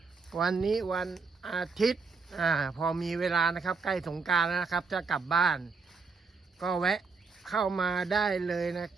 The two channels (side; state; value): left; quieter; 4.6 dB